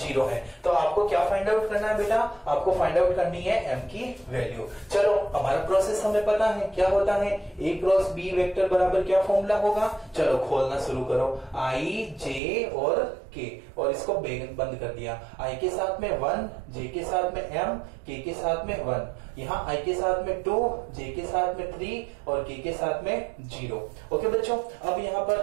है। तो आपको क्या फाइंड आउट करना है बेटा, आपको फाइंड आउट करनी है एम की वैल्यू। चलो, हमारा प्रोसेस हमें पता है क्या होता है, ए क्रॉस बी वेक्टर बराबर क्या फॉर्मूला होगा। चलो खोलना शुरू करो, आई जे और के, और इसको बंद कर दिया। आई के साथ में 1, जे के साथ में एम, के साथ में 1, यहाँ आई के साथ में 2, जे के साथ में 3 और के साथ में 0। ओके बच्चों, अब यहाँ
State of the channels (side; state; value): left; drops out; at 12.4 s